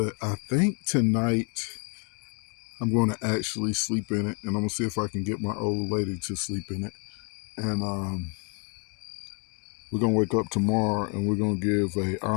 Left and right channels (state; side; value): quieter; right; 38.4 dB